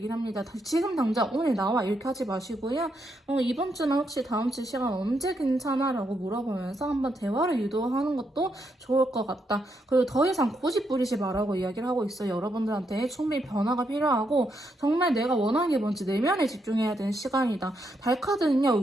합니다. 지금 당장 오늘 나와 이렇게 하지 마시고요. 이번 주나 혹시 다음 주 시간 언제 괜찮아? 라고 물어보면서 한번 대화를 유도하는 것도 좋을 것 같다. 그리고 더 이상 고집 부리지 말라고 이야기를 하고 있어요. 여러분들한테 충분히 변화가 필요하고 정말 내가 원하는 게 뭔지 내면에 집중해야 되는 시간이다. 달카드는요,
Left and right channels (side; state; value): both; normal; correlation 0.79